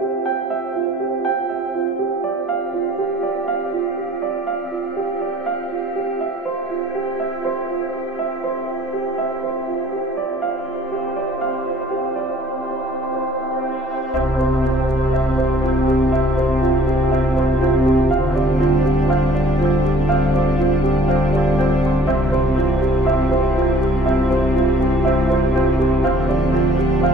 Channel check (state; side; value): normal; both; correlation 0.54